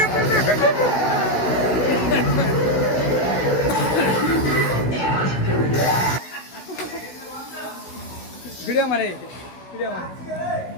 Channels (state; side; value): late; right; 16 ms